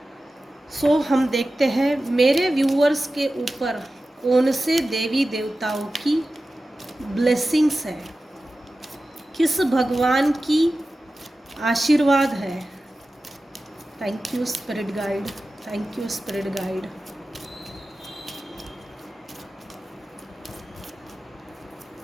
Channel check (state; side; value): normal; both; correlation 0.95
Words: सो हम देखते हैं मेरे व्यूअर्स के ऊपर कौन से देवी देवताओं की ब्लेसिंग्स है, किस भगवान की आशीर्वाद है। Thank you spirit guide, thank you spirit guide.